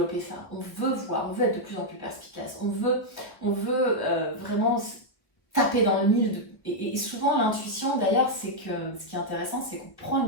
ça, on veut voir, on veut être de plus en plus perspicace, on veut vraiment taper dans le mille. Et souvent, l'intuition, d'ailleurs, c'est que ce qui est intéressant, c'est qu'on prend une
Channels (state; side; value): late; right; 1.3 ms